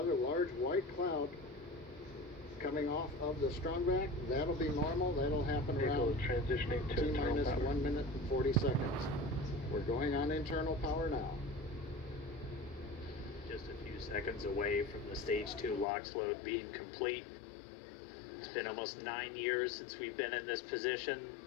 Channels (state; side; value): drops out; right; at 15.9 s